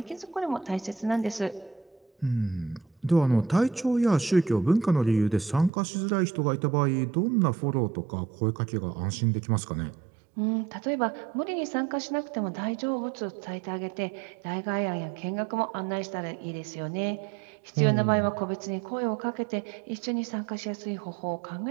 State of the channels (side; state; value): left; drops out; at 5.7 s